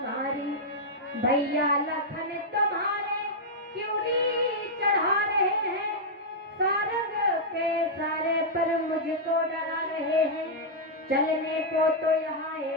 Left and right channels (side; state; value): both; normal; correlation -0.06